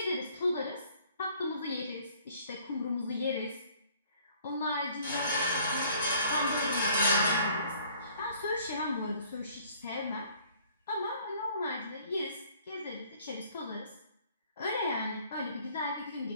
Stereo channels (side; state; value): both; inverted; correlation -0.58